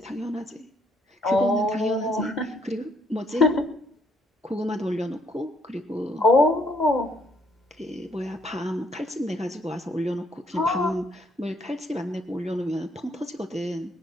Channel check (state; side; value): normal; both; correlation 0.68